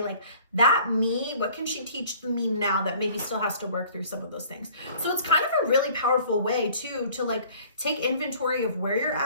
Like that me, what can she teach the me now that maybe still has to work through some of those things? So it's kind of a really powerful way too, to like take inventory of where you're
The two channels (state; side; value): inverted; both; correlation -0.52